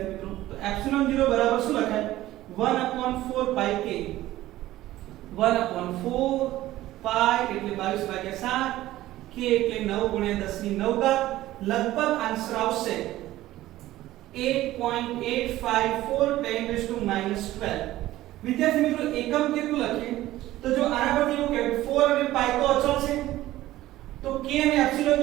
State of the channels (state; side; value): quieter; left; 15.5 dB